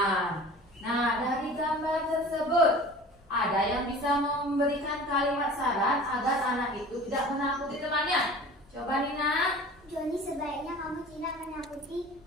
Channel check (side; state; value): both; normal; correlation 0.41